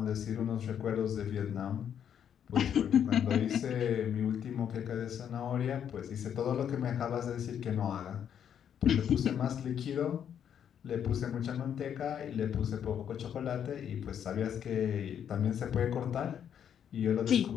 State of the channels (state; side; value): quieter; right; 8.9 dB